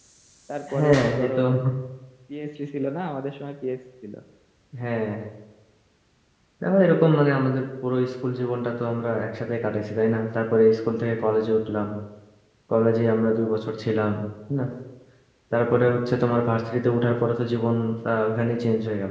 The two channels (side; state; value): both; identical; correlation 1.00